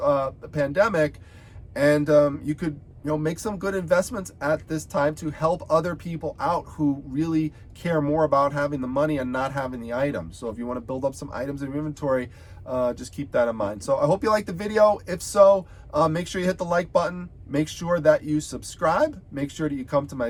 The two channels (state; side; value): identical; both; correlation 1.00